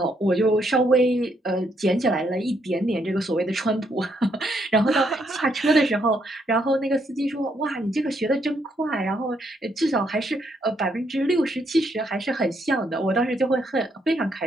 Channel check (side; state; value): both; normal; correlation 0.74